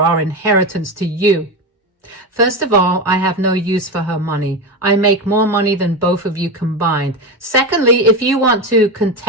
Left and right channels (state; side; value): normal; both; correlation 0.17